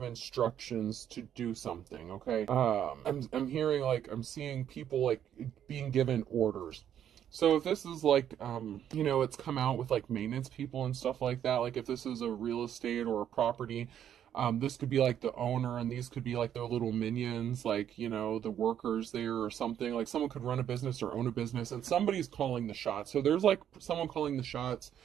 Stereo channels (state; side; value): quieter; left; 9.9 dB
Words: instructions to do something, okay? I'm hearing, like, I'm seeing people, like, being given orders. So if this is like, you know, it's come out with like maintenance people and stuff like that, like if this is a real estate or a property, this could be like the owner and these could be like their little minions, like, you know, the workers there or something. Like, someone could run a business or own a business and somebody's calling the shots. So there's like someone calling the shots.